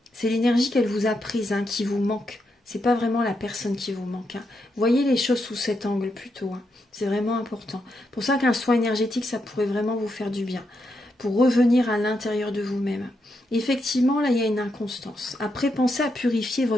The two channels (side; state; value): both; normal; correlation 0.82